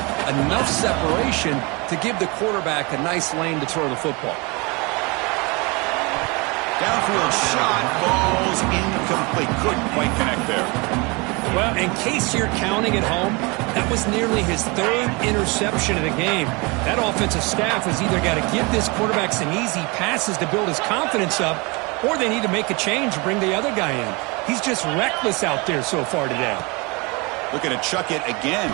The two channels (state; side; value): quieter; left; 27.7 dB